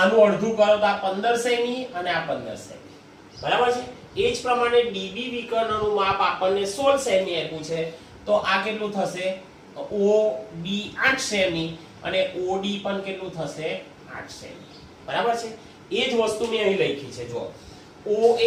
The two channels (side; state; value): both; identical; correlation 1.00